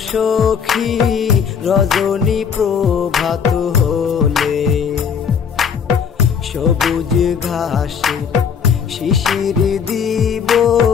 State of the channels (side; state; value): right; quieter; 7.0 dB